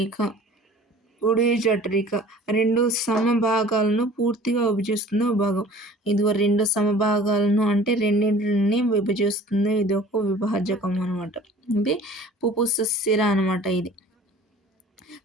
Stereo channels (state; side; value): normal; both; correlation 0.47